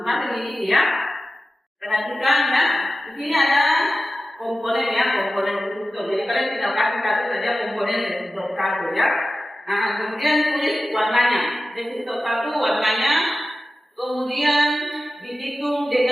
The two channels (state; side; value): normal; both; correlation 0.94